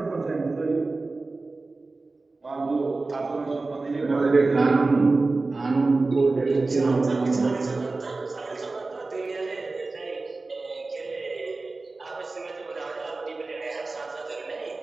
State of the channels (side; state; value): left; quieter; 3.5 dB